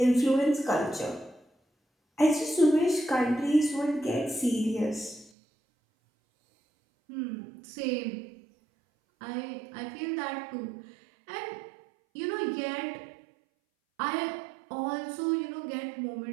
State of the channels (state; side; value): drops out; left; at 5.3 s